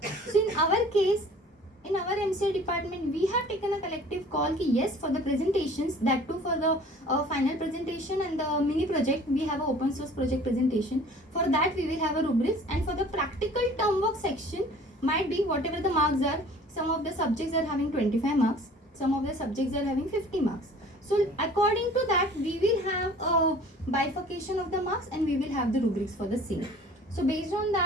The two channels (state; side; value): normal; both; correlation 0.48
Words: So in our case, in our MCA department, we have taken a collective call ki yes, for the presentations, that too for the final presentation and the mini project, we have an open source project presentation. For that we will have a rubrics, and for the practical term work section, might be whatever the marks are, some of the subjects are having 25 marks, some of the subjects are having 50 marks. So according to that, we will have a bifurcation of the marks, and we will have the rubrics for the same. So based on